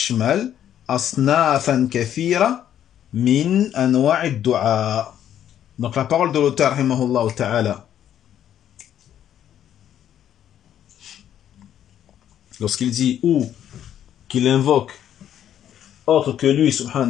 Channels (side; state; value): right; quieter; 10.4 dB